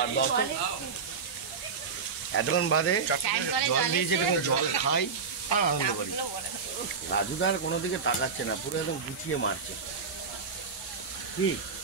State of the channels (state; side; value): quieter; left; 5.4 dB